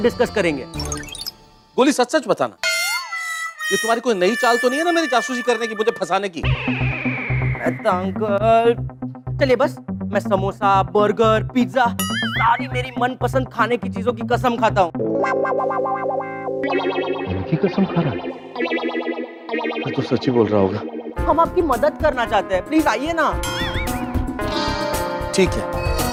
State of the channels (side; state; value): both; identical; correlation 1.00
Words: करेंगे। गोली सच सच बताना, ये तुम्हारी कोई नई चाल तो नहीं है ना मेरी जासूसी करने की, मुझे फंसाने की? अंकल चलिए, बस मैं समोसा, बर्गर, पिज्जा, सारी मेरी मनपसंद खाने की चीजों की कसम खाता हूँ। कसम खा रहा है? मैं तो सच ही बोल रहा होगा। हम आपकी मदद करना चाहते हैं, प्लीज आइए ना। ठीक है।